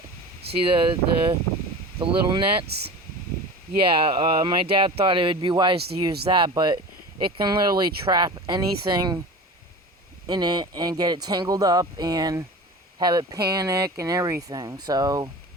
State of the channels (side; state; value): both; normal; correlation 0.34